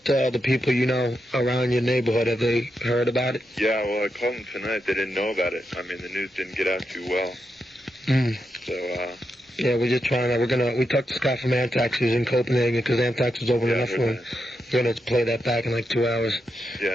the people you know around your neighborhood? Have they heard about it? Yeah, well, I called them tonight. They didn't know about it. I mean, the news didn't get out too well. So, yeah, we're just trying to, we talked to Scott from Anthrax, who's in Copenhagen, because Anthrax was open enough for him. We're going to play that back in like 2 hours. Yeah,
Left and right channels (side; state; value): both; normal; correlation 0.85